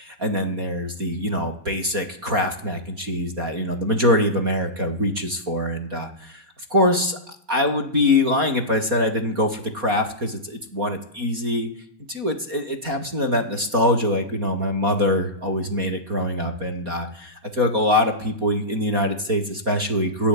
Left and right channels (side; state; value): left; late; 4.2 ms